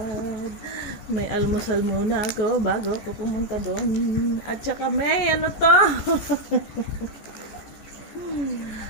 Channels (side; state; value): right; late; 14 ms